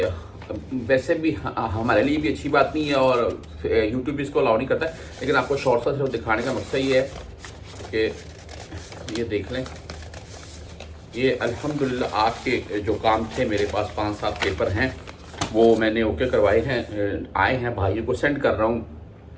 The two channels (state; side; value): identical; both; correlation 1.00